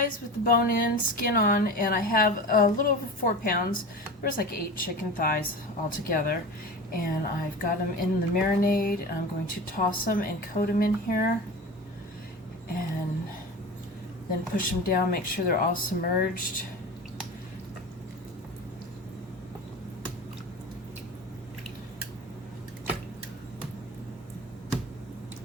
with the bone in, skin on, and I have a little over 4 pounds. There's like 8 chicken thighs all together. And I've got them in the marinade. I'm going to toss them and coat them in here. And then push them down, make sure they're all submerged.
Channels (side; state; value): both; normal; correlation 0.31